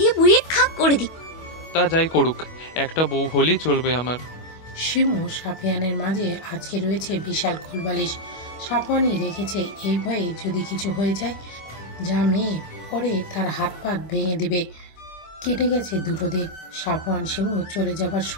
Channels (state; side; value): late; right; 25 ms